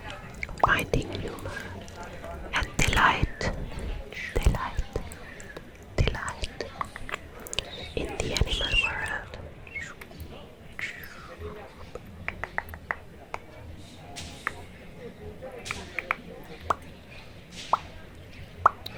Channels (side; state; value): both; identical; correlation 1.00